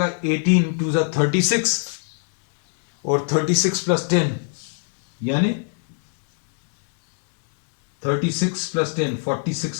18 टू 36, और 36 प्लस 10 यानी 36 प्लस 10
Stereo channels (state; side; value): silent; right; digital silence